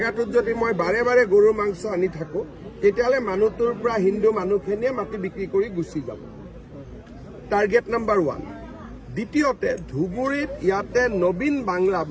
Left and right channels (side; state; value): both; identical; correlation 1.00